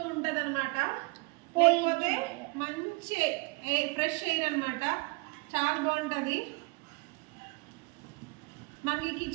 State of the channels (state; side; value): quieter; left; 27.6 dB